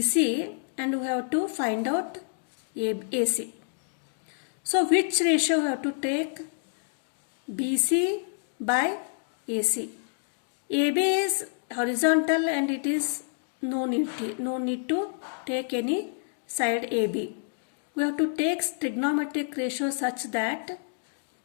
and we have to find out AC. So which ratio we have to take? BC by AC. AB is horizontal and it is no need to take any side AB. We have to take trigonometric ratio such that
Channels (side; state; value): right; silent; digital silence